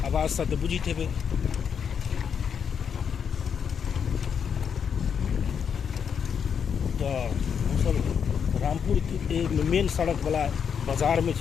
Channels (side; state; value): right; quieter; 7.2 dB